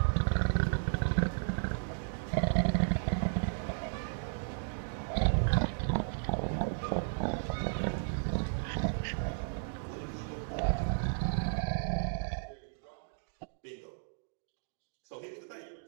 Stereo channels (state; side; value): silent; left; digital silence